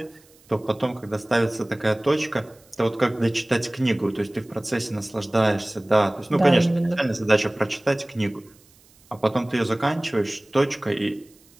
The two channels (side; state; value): right; noise; hiss, 29 dB below the sound